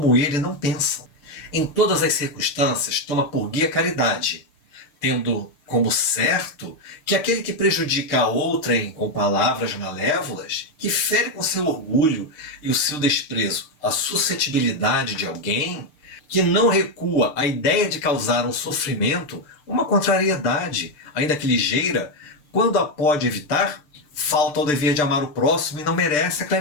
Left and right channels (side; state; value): right; late; 6.7 ms